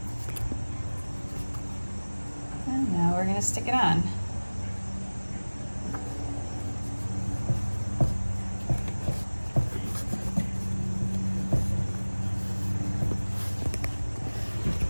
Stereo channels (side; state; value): both; inverted; correlation -1.00